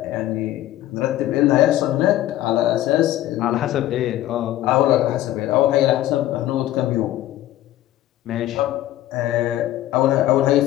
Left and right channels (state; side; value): quieter; right; 14.3 dB